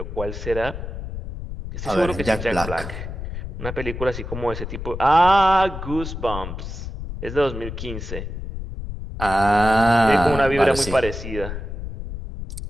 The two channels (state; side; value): noise; left; rumble, 8 dB below the sound